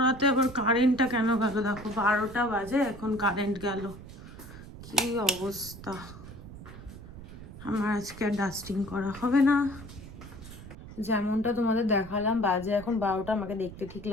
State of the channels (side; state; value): right; noise; rumble, 15 dB below the sound